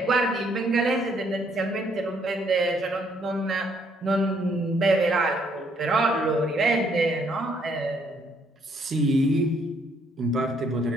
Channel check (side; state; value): both; normal; correlation 0.68